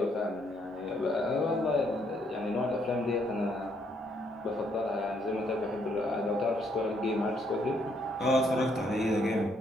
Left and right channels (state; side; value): normal; both; correlation 0.71